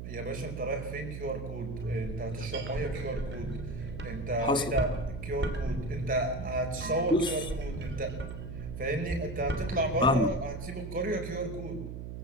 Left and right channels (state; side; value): noise; right; hum, 7 dB below the sound